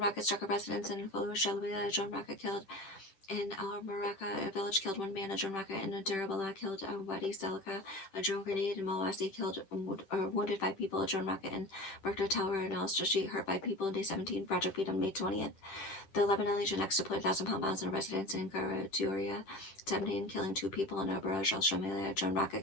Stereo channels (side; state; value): right; late; 10 ms